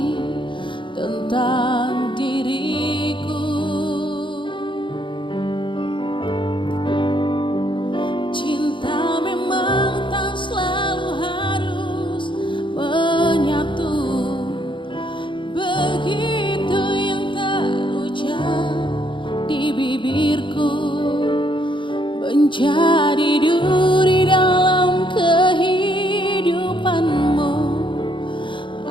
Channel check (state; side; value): late; right; 0.24 ms